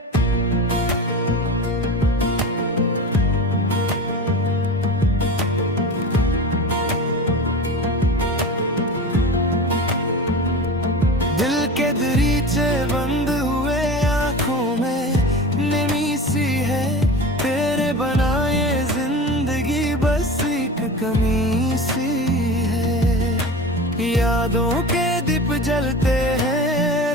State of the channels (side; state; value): both; normal; correlation 0.31